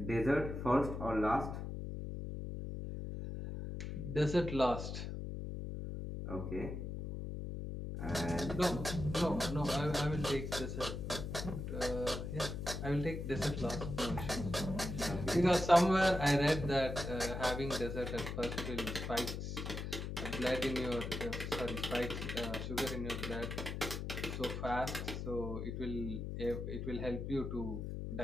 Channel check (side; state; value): left; noise; hum, 5 dB below the sound